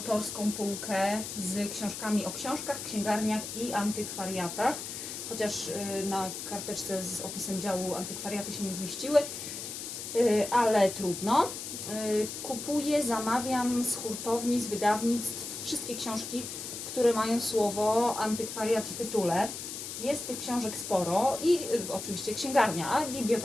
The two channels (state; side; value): noise; left; hiss, 7 dB below the sound